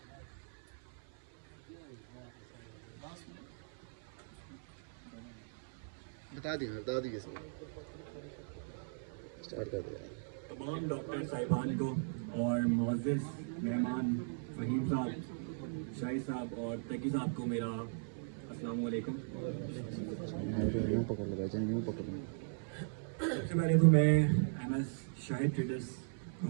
बता दी स्टार्ट कर दिया। तमाम डॉक्टर साहिबान को और मुअज़्ज़िज़ मेहमान फ़हीम साहब, शाही साहब और तकी साहब को मेरा अस्सलाम वालेकुम। यूँ पकड़ लगा यूँ पकड़। सबसे पहले तो मैं MS शाहिद ट्रेडर्स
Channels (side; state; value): left; silent; 52 dB below the other